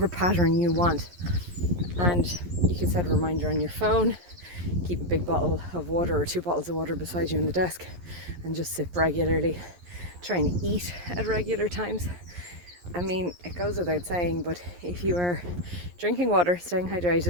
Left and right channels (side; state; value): left; late; 11 ms